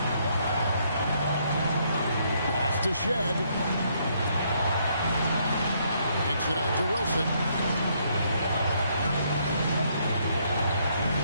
Pass to Shed. Kicks it out to Wilson.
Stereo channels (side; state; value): both; inverted; correlation -0.71